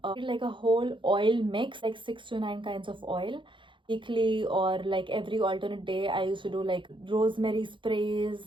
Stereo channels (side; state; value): left; late; 0.24 ms